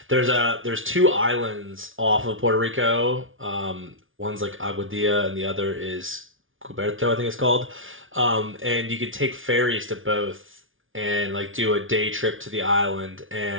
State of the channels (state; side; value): late; left; 0.57 ms